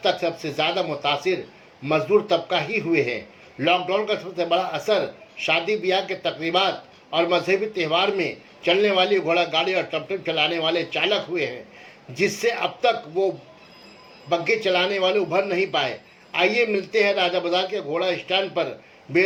तक सबसे ज़्यादा मुतासिर मजदूर तबका ही हुए हैं। लॉकडाउन का सबसे बड़ा असर शादी ब्याह के तकरीबात और मजहबी त्यौहार में चलने वाली घोड़ा गाड़ी और टमटम चलाने वाले चालक हुए हैं, जिससे अब तक वो बग्घे चलाने वाले उभर नहीं पाए। आइए मिलते हैं राजा बाजार के घोड़ा स्टैंड पर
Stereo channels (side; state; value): both; identical; correlation 1.00